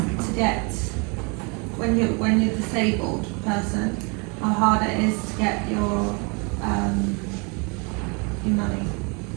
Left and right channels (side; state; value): left; quieter; 32.5 dB